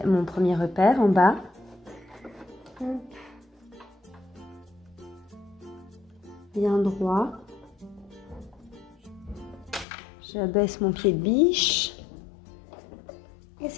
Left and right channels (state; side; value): drops out; right; at 9.9 s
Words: mon premier repère en bas. Bien droit. J'abaisse mon pied de biche. Et